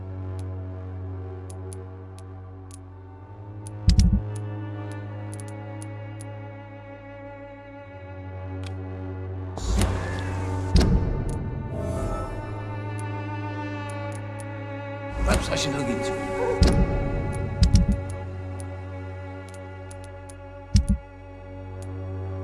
Perhaps I should look into it.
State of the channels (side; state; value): both; identical; correlation 1.00